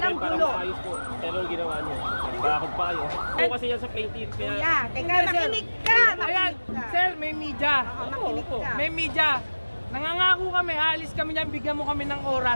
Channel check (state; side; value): inverted; both; correlation -1.00